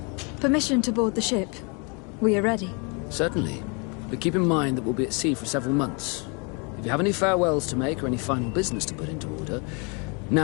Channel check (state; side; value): quieter; right; 33.4 dB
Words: Permission to board the ship. We are ready. Certainly. But keep in mind that we'll be at sea for several months. If you have any farewells to make or any final business to put into order,